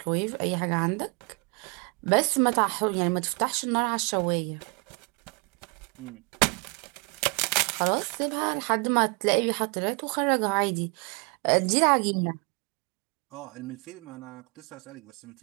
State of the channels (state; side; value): quieter; left; 31.2 dB